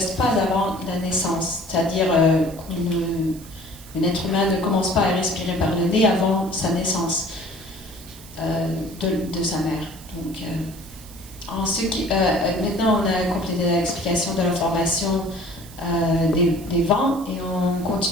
pas avant la naissance. C'est-à-dire qu'un être humain ne commence pas à respirer par le nez avant sa naissance de sa mère. Donc, maintenant, on a complété l'explication de la formation des vents et on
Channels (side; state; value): right; noise; hiss, 19 dB below the sound